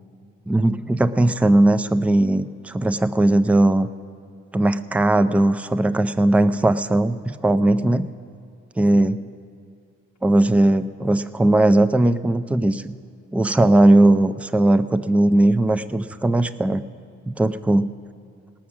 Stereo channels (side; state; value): both; normal; correlation 0.96